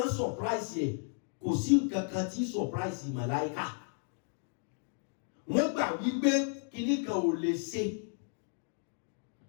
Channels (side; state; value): right; silent; 55 dB below the other